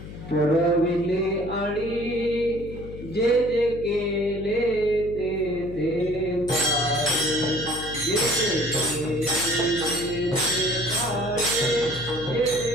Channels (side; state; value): left; noise; hum, 12 dB below the sound